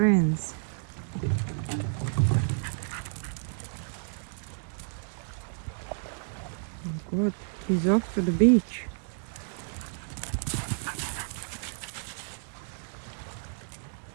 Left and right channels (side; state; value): left; silent; digital silence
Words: Oh God, he's off to the beach.